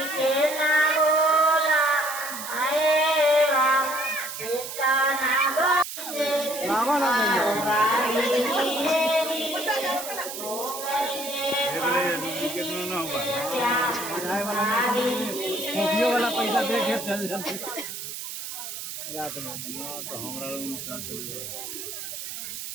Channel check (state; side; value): noise; right; hiss, 8 dB below the sound